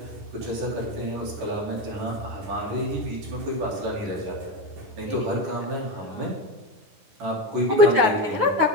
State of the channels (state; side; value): late; left; 9.5 ms